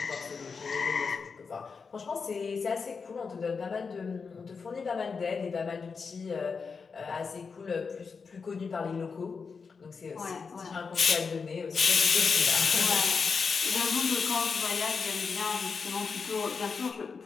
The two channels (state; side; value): quieter; right; 5.2 dB